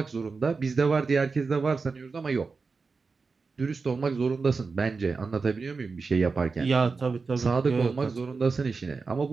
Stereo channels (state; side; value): quieter; left; 4.5 dB